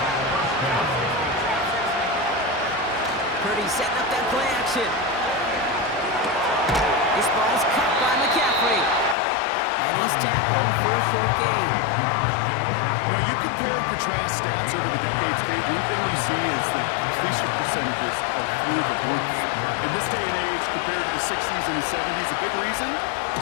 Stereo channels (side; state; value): right; drops out; at 9.2 s